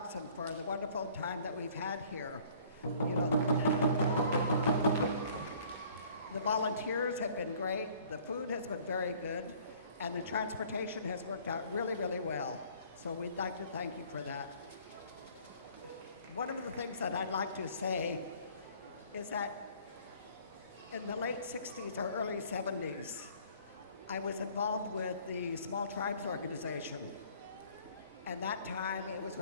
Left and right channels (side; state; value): both; inverted; correlation -0.55